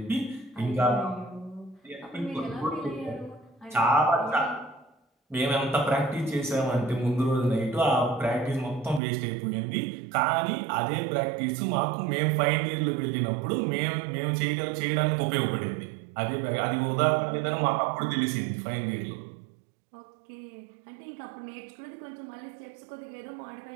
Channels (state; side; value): drops out; left; at 9.0 s